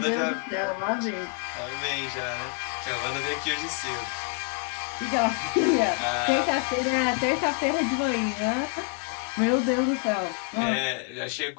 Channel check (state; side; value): quieter; right; 39.9 dB